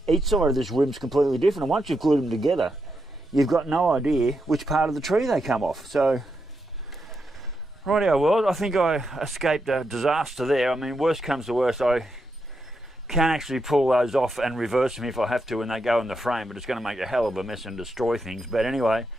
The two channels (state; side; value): normal; both; correlation 0.84